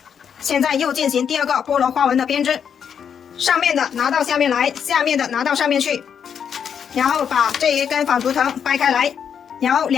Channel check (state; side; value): quieter; right; 7.7 dB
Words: 现在又进行第2个菠萝花纹的编织，上面的拿到下面来，下面的拿到上面去，然后把这1根纺竹藤掰开来，然后